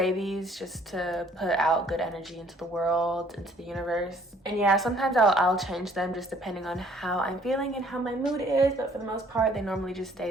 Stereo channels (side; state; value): both; normal; correlation 0.60